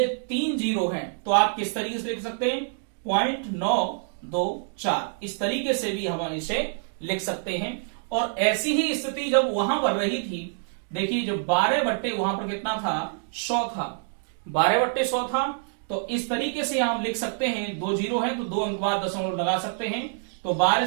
3 0 है, तो आप किस तरीके से लिख सकते हैं 0.924, इस तरीके से भी हम इसे लिख सकते हैं। और ऐसी ही स्थिति जब वहां पर रही थी, देखिए जो 12 वहां पर कितना था 100 था, 12/100 था, तो इस तरीके से हम लिख सकते हैं 2 0 है तो 2 अंक बाद दशमलव लगा सकते हैं। तो 12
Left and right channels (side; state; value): left; silent; digital silence